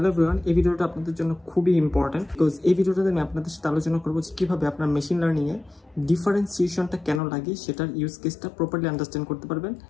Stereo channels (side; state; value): right; drops out; at 7.2 s